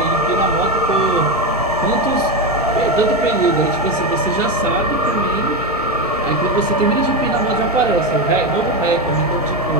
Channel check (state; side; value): normal; both; correlation 0.13